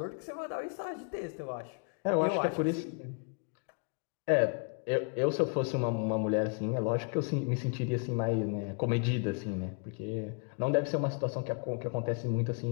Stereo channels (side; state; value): right; quieter; 38.5 dB